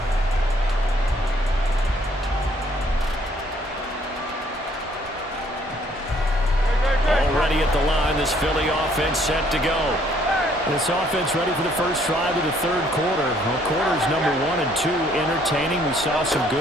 Already at the line, this Philly offense set to go. This offense ready for the first drive of the third quarter. Well, quarters number 1 and 2 entertaining. We saw some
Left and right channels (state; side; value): normal; both; correlation 0.64